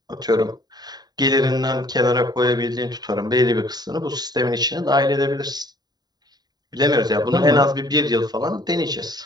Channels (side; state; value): left; late; 0.20 ms